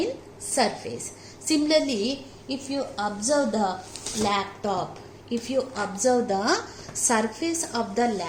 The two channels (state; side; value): identical; both; correlation 1.00